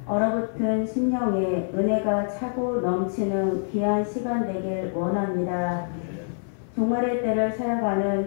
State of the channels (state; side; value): silent; right; 57 dB below the other